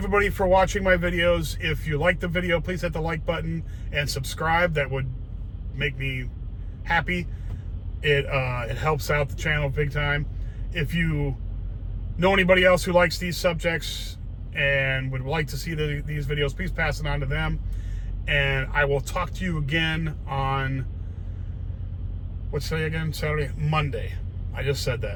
for watching my videos. If you like the video, please hit the like button and subscribe. That would make me happy. It helps out the channel big time. If you know anybody else who likes these subjects and would like to see these videos, please pass it on to them. And I will talk to you again on, what's today again? Saturday? Monday. I just said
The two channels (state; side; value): identical; both; correlation 1.00